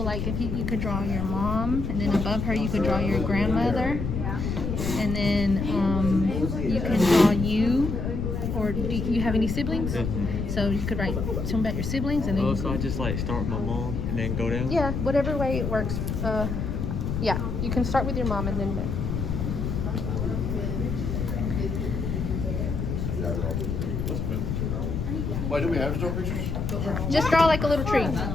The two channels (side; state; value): left; noise; rumble, 2 dB below the sound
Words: like if you could draw your mom, and then above her you could draw your grandmother, and then you can draw you, or do you have any siblings? So you could write some about your siblings and then. Oh, so I just like start with my mom and then go down? Yeah, whatever way it works. Yeah, you can start with your mom and then. Why do we have to draw pictures? Just draw like a little tree.